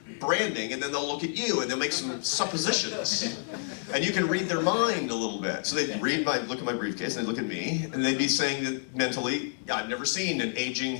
branding, and then they'll look at you, and they'll make some suppositions. And you can read their mind a little bit. So they'd look at my briefcase, and they'd look at me, and they'd be saying that mentally, I've never seen an aging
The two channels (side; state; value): right; silent; digital silence